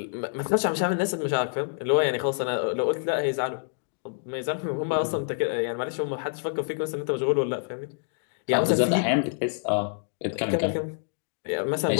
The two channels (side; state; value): right; silent; digital silence